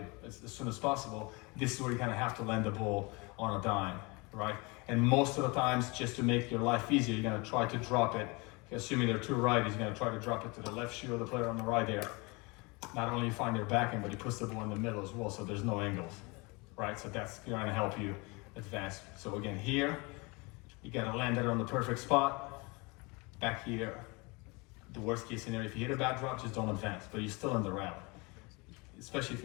as soon as possible. This is where you kind of have to land the ball on a dime, right? And most of the times, just to make your life easier, you're going to try to drop it. Assuming there are two righties, you're going to try to drop it to the left shoe of the player on the right there. Not only you find their backhand, but he puts the ball in the middle as well, so there's no angles, right? So that's going to help you advance. So again, here, you got to land it on the perfect spot. Back here, the worst case scenario, if you hit a bad drop, just don't advance, but you're still in the rally. Especially if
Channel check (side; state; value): right; quieter; 27.4 dB